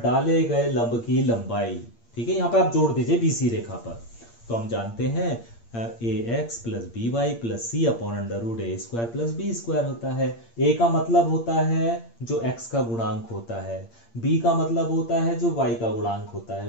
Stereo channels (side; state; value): right; late; 8.7 ms